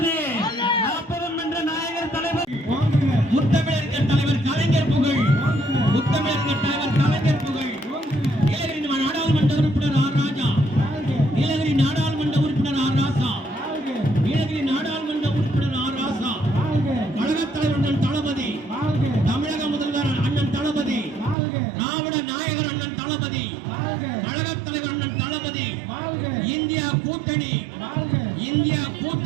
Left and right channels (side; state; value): left; drops out; at 21.4 s